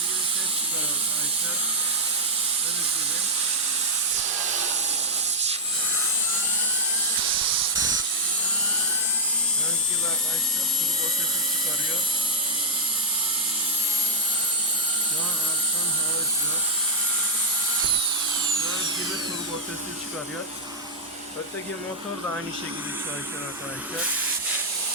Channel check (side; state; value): both; normal; correlation -0.06